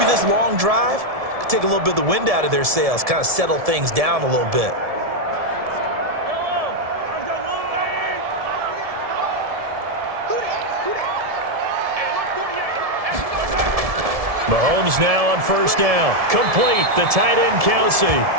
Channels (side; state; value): left; late; 1.7 ms